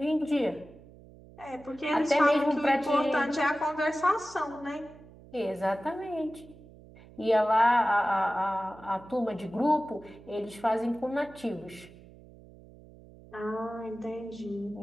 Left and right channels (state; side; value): noise; right; hum, 21 dB below the sound